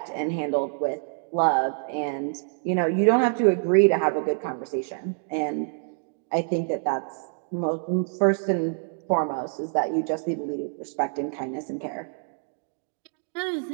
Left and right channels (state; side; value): silent; left; digital silence